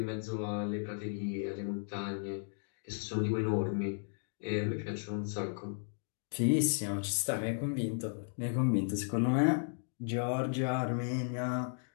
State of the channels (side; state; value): right; silent; digital silence